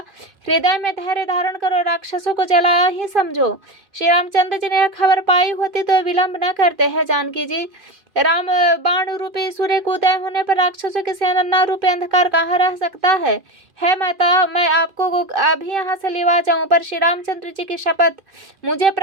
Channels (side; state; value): left; late; 2.4 ms